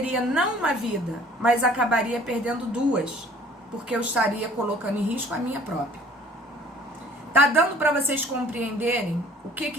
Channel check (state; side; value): normal; both; correlation 0.53